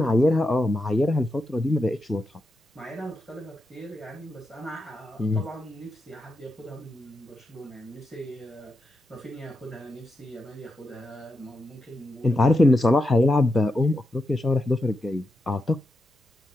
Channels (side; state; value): both; normal; correlation 0.86